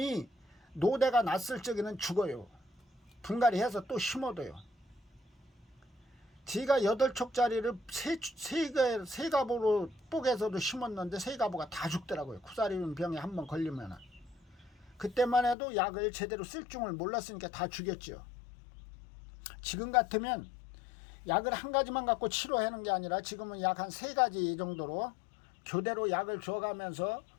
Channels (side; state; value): right; drops out; at 15.6 s